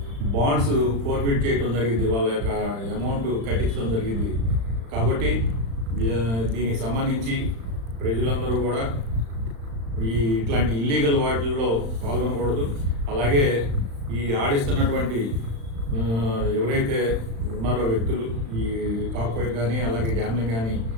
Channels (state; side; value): late; left; 35 ms